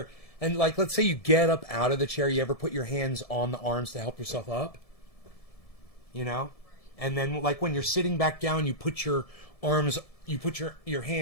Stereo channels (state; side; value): late; right; 1.7 ms